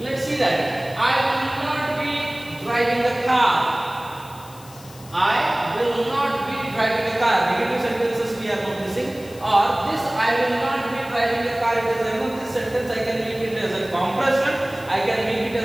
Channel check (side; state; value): left; noise; hiss, 21 dB below the sound